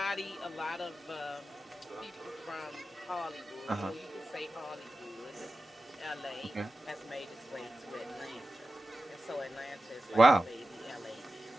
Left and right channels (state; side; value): normal; both; correlation 0.94